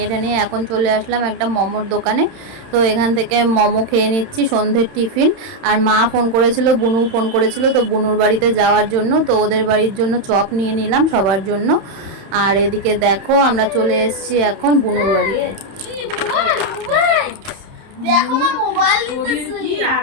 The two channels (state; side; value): late; left; 31 ms